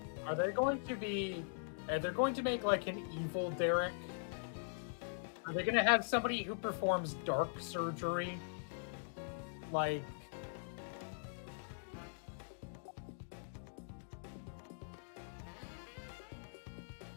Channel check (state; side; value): silent; right; digital silence